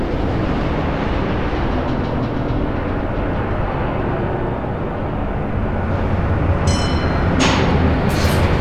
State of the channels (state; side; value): identical; both; correlation 1.00